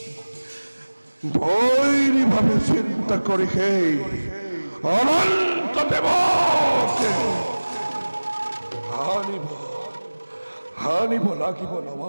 বৈরী ভাবে চিন্তা করি হে অনন্ত দেবকে হানিব লাগিব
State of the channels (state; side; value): inverted; both; correlation -1.00